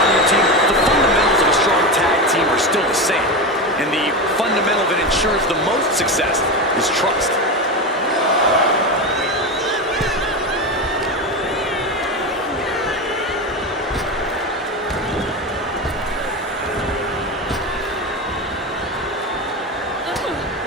your team, the fundamentals of a strong tag team are still the same. And the fundamental that ensures the most success is trust.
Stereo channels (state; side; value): normal; both; correlation 0.19